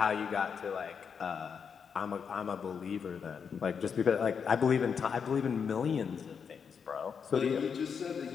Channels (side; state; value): right; quieter; 6.5 dB